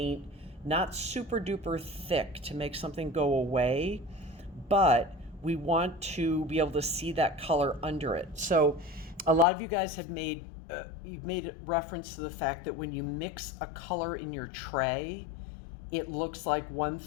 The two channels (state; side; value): drops out; right; at 9.5 s